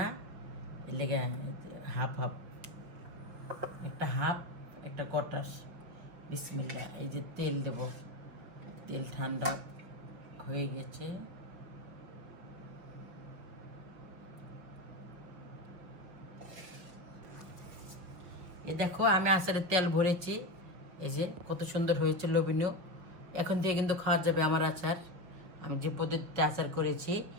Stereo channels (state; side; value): late; left; 6.0 ms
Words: এর লেগে হাফ হাফ, একটা হাফ একটা কটাস। বিসমিল্লাহ। এই যে তেল দেব, তেল ঠান্ডা হয়ে গেছে। এই দেখো আমি আচারের তেল ভরেছি, এই যে কত সুন্দর হয়েছে, লোভনীয়। এখন থেকে কিন্তু খাওয়া যাবে আমার আচার, আমি যে পদ্ধতিতে আচার করেছি।